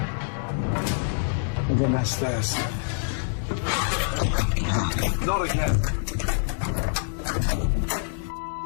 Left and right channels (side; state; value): right; silent; digital silence